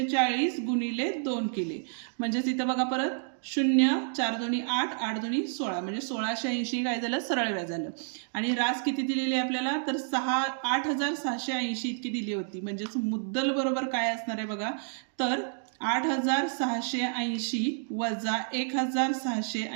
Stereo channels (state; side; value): silent; left; digital silence